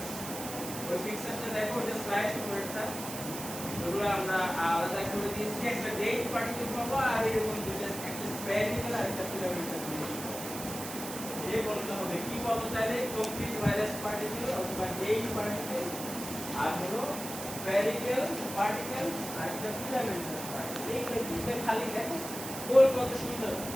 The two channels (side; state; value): right; noise; hiss, 8 dB below the sound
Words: ওই পিকচারটা দেখো ওটা স্লাইড করেটা ওগুলো আমরা আলাদা করে দিয়েছি একটা ডেট পার্টিকেল পাবো আর এরকম দুটো একটা স্প্যারিকেল আর একটা ফিলামেন্টাল এই বলতে হবে কি পাবো তাহলে কমপ্লিট ভাইরাস পার্টিকেল অথবা ডেট পার্টিকেল আর হলো স্প্যারিকেল পার্টিকেল আর একটা ফিলামেন্টাল পার্টিকেল এই দুটো খালি দেখো গোল কত সুন্দর